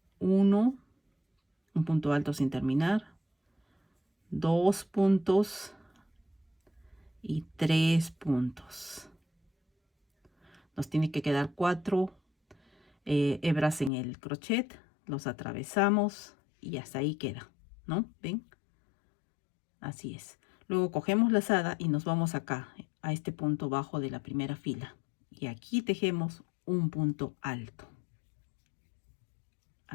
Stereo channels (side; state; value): right; drops out; at 13.9 s